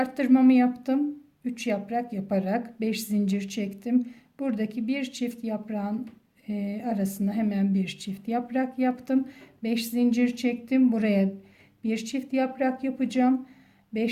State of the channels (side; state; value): both; identical; correlation 1.00